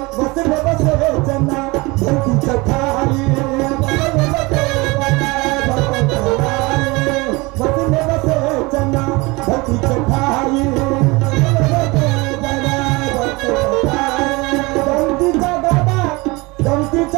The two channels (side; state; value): left; quieter; 24.4 dB